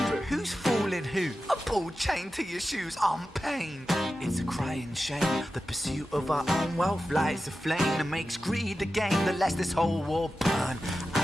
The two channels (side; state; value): both; normal; correlation 0.92